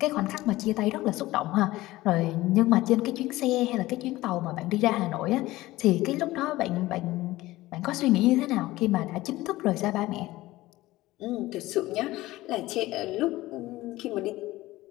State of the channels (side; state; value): right; quieter; 17.7 dB